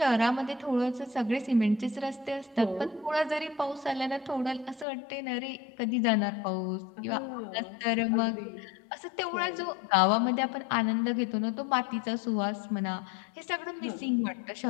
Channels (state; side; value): drops out; right; at 4.9 s